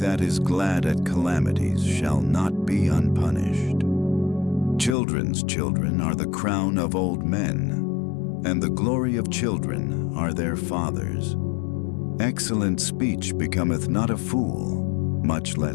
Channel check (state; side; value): drops out; right; at 5.0 s